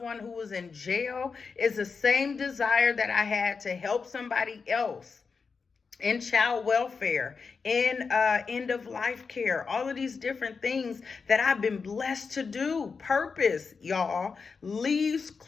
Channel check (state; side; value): quieter; right; 5.1 dB